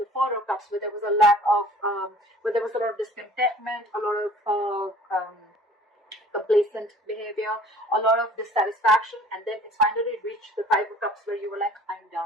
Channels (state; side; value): normal; both; correlation 0.50